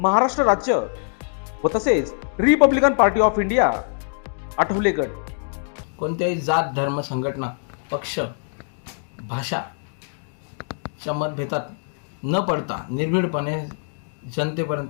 राज्य व तसेच Republican party of India Athawale गट. कोणत्याही जात, धर्म, संघटना, पक्ष, भाषाच्या मतभेदात न पडता निर्भीडपणे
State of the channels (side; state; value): right; silent; digital silence